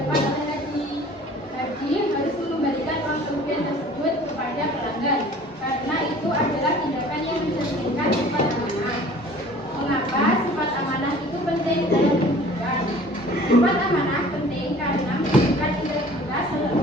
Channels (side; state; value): both; normal; correlation 0.48